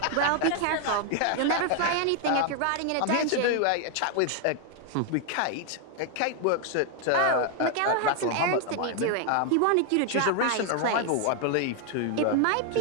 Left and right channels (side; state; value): both; different; correlation 0.00